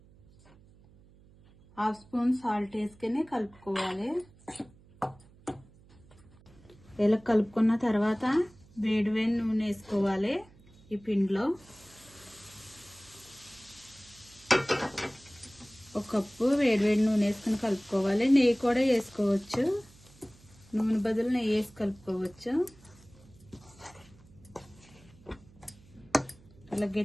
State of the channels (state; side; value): noise; right; hum, 26 dB below the sound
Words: 1/2 స్పూన్ సాల్ట్ వేసుకొని కలుపుకోవాలి. ఇలా కలుపుకున్న తర్వాత వేడి నూనె వేసుకోవాలి. ఈ పిండిలో 1 కప్పు వేడి నూనె వేసుకుని కలుపుకోవాలి. నెయ్యి కూడా వేసుకోవచ్చు, నూనె బదులు నెయ్యి వేసి కలుపుకోవచ్చు. అలా